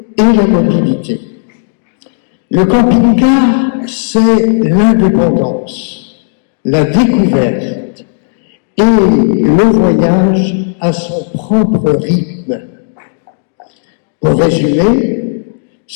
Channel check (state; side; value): silent; right; digital silence